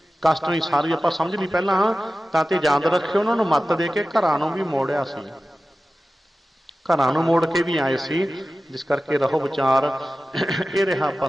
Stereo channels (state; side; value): normal; both; correlation 0.95